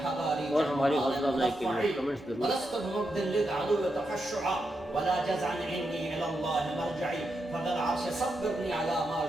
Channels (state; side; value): normal; both; correlation 0.85